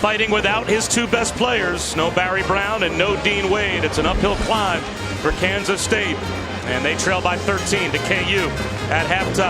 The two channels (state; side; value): identical; both; correlation 1.00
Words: without his 2 best players, no Barry Brown and no Dean Wade. It's an uphill climb for Kansas State, and they trail by 13 to KU at